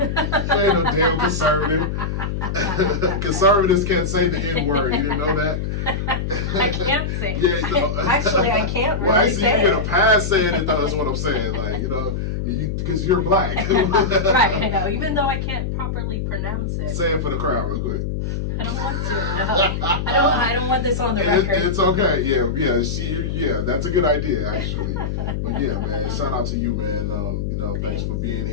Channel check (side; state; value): left; noise; hum, 2 dB below the sound